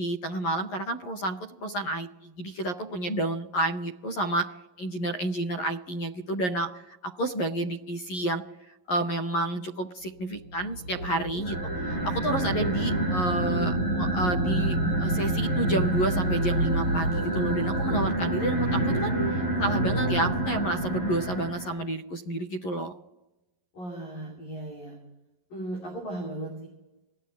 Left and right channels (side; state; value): right; late; 11 ms